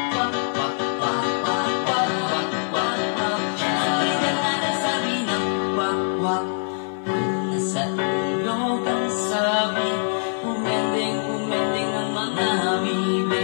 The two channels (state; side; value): silent; right; digital silence